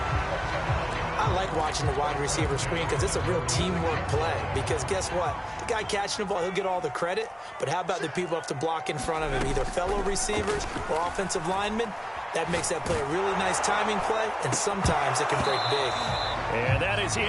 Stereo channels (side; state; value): both; identical; correlation 1.00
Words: I like watching the wide receiver screen because it's a real teamwork play. Because guess what? The guy catching the ball, he'll get all the credit. But how about the people have to block in front of him, either fellow receivers or offensive linemen? That makes that play a really nice timing play, and sometimes it can break big. And that is